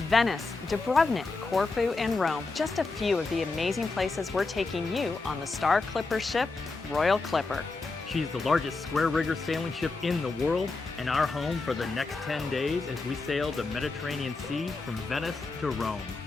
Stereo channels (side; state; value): right; quieter; 3.7 dB